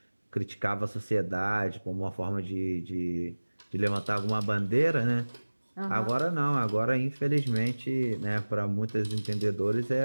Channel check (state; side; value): inverted; both; correlation -1.00